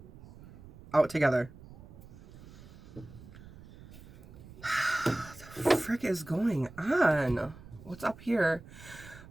out together. The frick is going on? What's up here?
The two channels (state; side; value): noise; right; rumble, 18 dB below the sound